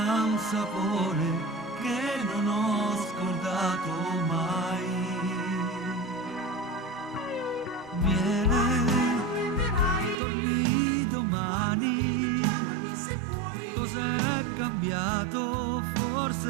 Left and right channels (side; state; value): left; drops out; at 10.2 s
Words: un sapore che non ho scordato mai. Miele, torni domani. Cos'è cambiato?